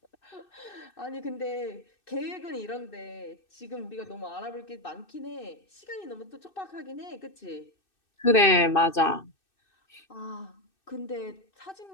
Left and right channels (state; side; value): late; right; 2.6 ms